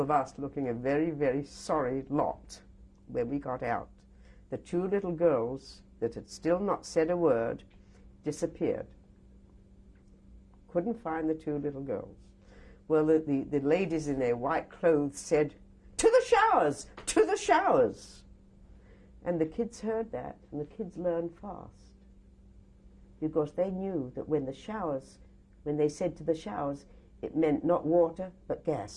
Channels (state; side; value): identical; both; correlation 1.00